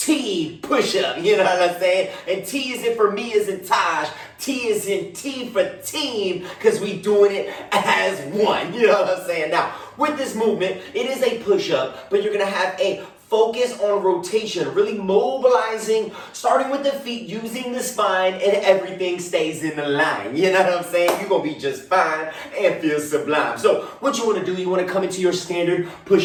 push-up. You know what I'm saying? And T is in for me as in Taj. T is in T for team because we doing it as one. You know what I'm saying? Now, with this movement, it is a push-up, but you're going to have a focus on rotation, really mobilizing, starting with the feet, using the spine, and everything stays in the line. You know what I'm saying? You're going to be just fine and feel sublime. So what you want to do, you want to come into your standard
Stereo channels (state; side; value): identical; both; correlation 1.00